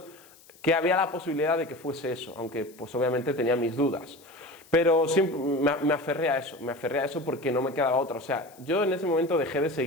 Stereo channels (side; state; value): left; noise; hiss, 25 dB below the sound